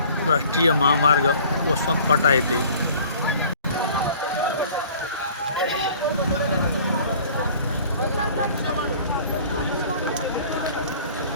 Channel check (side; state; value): both; inverted; correlation -0.50